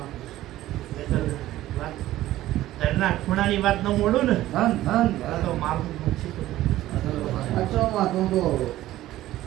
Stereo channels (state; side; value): quieter; left; 14.9 dB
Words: વાત ઘરના ખૂણાની વાત ન મોડું ને ધન ધન આ તો મારું નુકસી તો સાચો માં તું તો